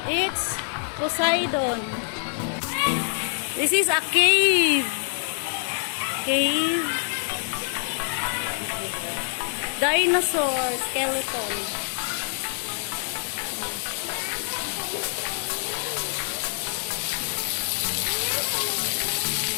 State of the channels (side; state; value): right; silent; digital silence